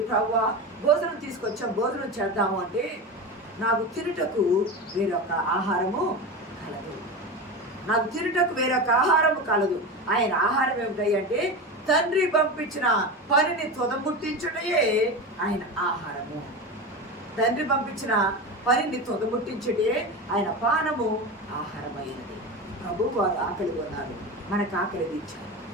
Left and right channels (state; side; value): normal; both; correlation 0.24